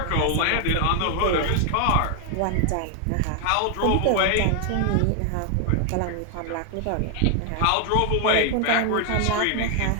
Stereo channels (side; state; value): both; different; correlation 0.00